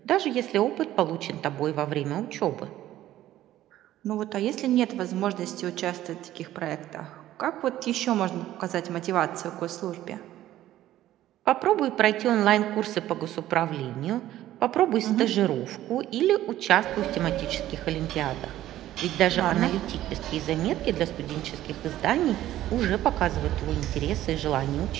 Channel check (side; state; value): left; quieter; 13.7 dB